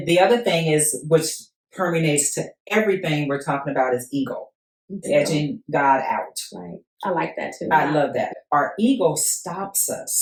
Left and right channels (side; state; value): both; identical; correlation 1.00